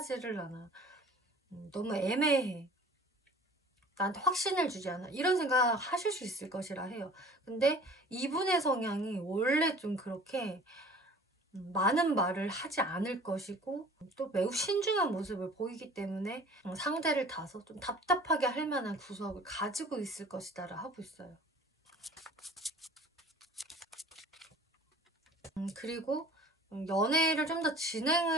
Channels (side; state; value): both; normal; correlation 0.47